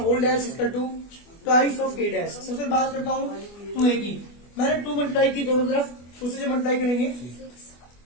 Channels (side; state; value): right; late; 24 ms